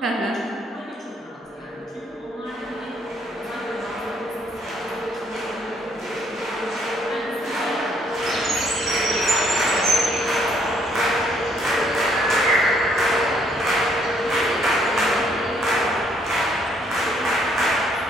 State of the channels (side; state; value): both; normal; correlation 0.68